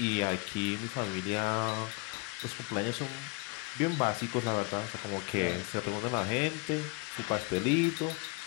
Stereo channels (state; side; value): quieter; right; 28.5 dB